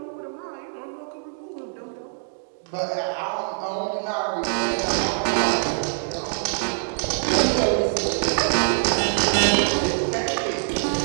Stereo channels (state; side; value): silent; left; digital silence